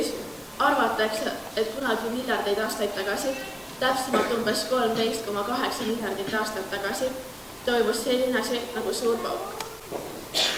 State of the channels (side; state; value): both; identical; correlation 1.00